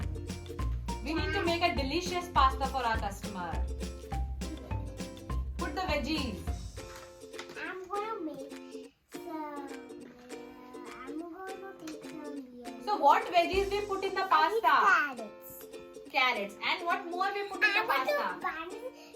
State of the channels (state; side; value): identical; both; correlation 1.00